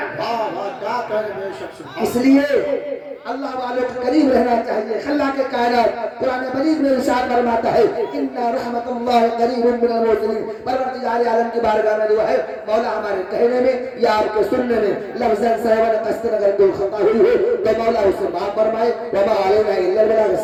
इसलिए अल्लाह वालों के करीब रहना चाहिए। अल्लाह के कायनात कुरान मजीद में इरशाद फरमाता है इन्ना रहमतुल्लाहि करीबुम मिनल मुहसिनीन। परवरदिगार आलम की बारगाह में दुआ है मौला हमारे कहने में या आपके सुनने में लफ्ज़न सहवन कस्तन अगर कोई खता हुई हो तो मौला उसे माफ फरमाए। व मा अलैना इल्लल बलाग।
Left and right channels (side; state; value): both; identical; correlation 1.00